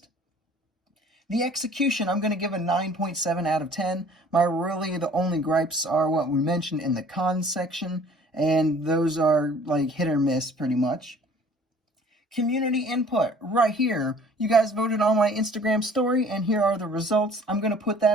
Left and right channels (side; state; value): both; normal; correlation 0.52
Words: The execution, I'm going to give a 9.7 out of 10. The only gripes are what we mentioned in the cons section, and those are like hit or miss pretty much. Community input right here. You guys voted on my Instagram story, and here are the results. I'm going to put